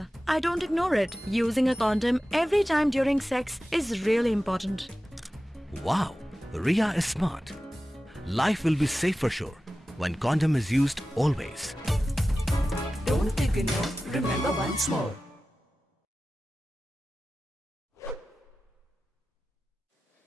I don't ignore it. Using a condom every time during sex is really important. Wow, Ria is smart. Life will be safe for sure when condom is used always. Don't ignore, remember once more.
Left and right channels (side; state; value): both; normal; correlation 0.95